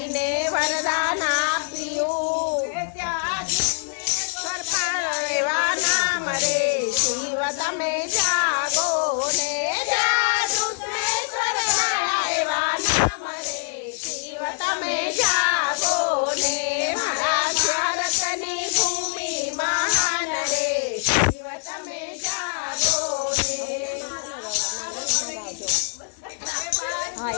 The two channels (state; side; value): silent; right; digital silence